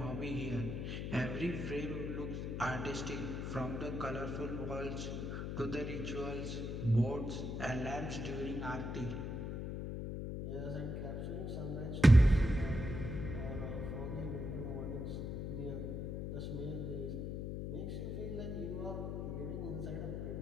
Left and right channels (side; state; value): left; noise; hum, 3 dB below the sound